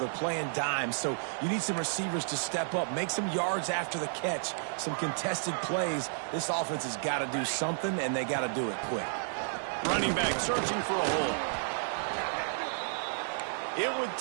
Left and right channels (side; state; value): left; silent; digital silence